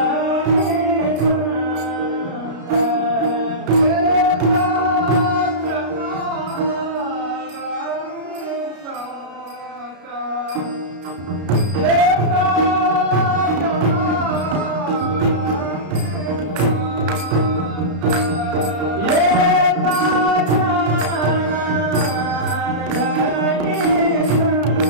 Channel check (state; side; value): late; left; 33 ms